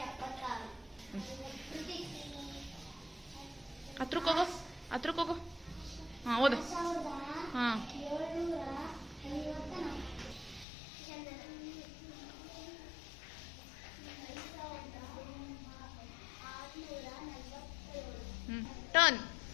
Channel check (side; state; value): right; drops out; at 10.7 s